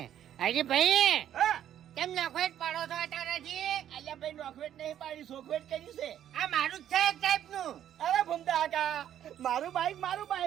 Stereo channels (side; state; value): left; quieter; 10.7 dB